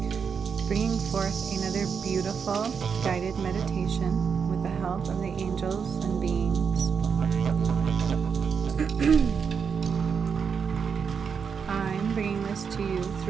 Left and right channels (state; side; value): quieter; left; 6.4 dB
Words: bringing forth another beautiful guided meditation with the help of the angels and beings. I'm bringing this to you